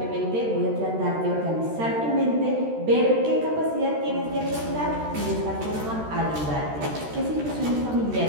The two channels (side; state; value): left; late; 13 ms